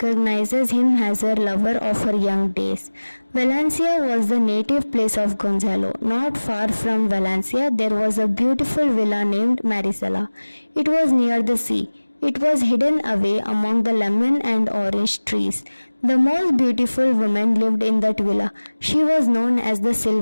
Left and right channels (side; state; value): both; inverted; correlation -1.00